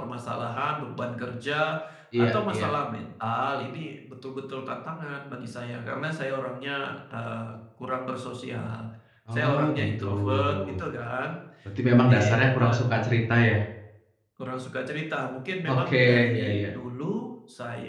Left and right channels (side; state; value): both; identical; correlation 1.00